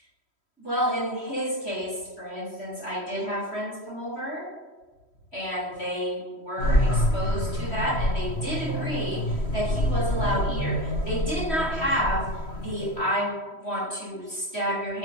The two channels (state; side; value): late; right; 3.1 ms